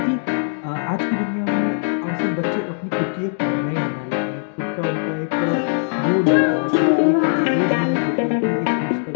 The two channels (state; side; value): silent; right; digital silence